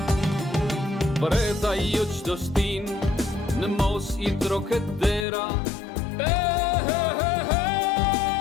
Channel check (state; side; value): drops out; right; at 5.2 s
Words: Breda jo qdo stin në mos i troket dera.